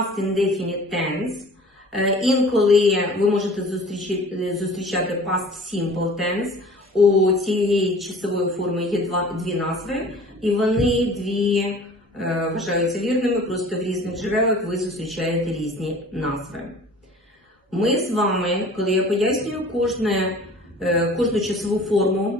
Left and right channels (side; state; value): both; normal; correlation 0.46